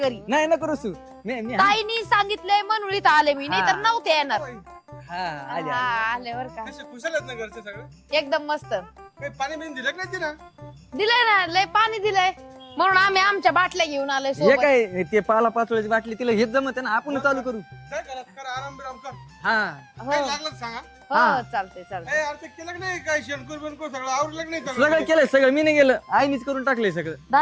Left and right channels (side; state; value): both; identical; correlation 1.00